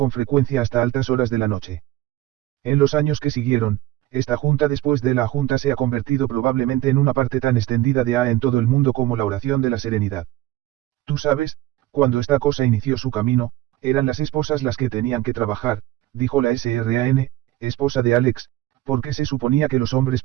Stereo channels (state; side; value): quieter; left; 15.6 dB